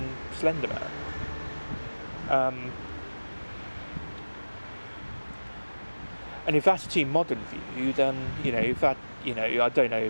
Slender Man. And if that's a too modern view, then if that I don't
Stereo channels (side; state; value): both; inverted; correlation -1.00